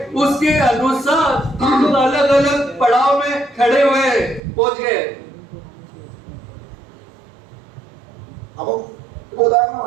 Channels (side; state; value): left; drops out; at 4.4 s